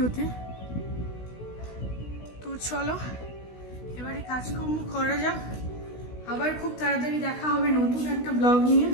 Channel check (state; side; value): late; right; 16 ms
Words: তো চলো এবারে কাজকর্ম করা যাক, আবার খুব তাড়াতাড়ি দেখা হবে নতুন একটা ব্লগ নিয়ে।